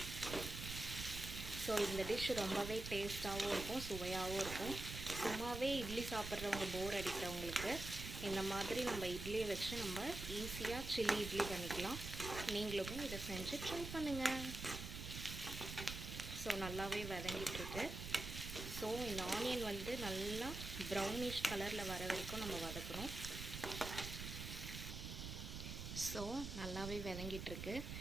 ஸோ இந்த டிஷ் ரொம்பவே டேஸ்ட்டாகவும் இருக்கும், சுவையாகவும் இருக்கும். சும்மாவே இட்லி சாப்பிட்றவங்க போர் அடிக்கிறவங்களுக்கு இந்த மாதிரி நம்ம இட்லியை வச்சு நம்ம ஈஸியாக சில்லி இட்லி பண்ணிக்கலாம். நீங்களும் இதை செஞ்சு ட்ரை பண்ணுங்கள். ஸோ நல்லாவே வதங்கிட்டுருக்கு. ஸோ இந்த ஆனியன் வந்து நல்லா ப்ரௌனிஷ் கலரில் வர வரைக்கும் நம்ம வதக்கணும். ஸோ நல்லாவே வதங்கிட்டுருக்கு.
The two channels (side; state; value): right; noise; rumble, 7 dB below the sound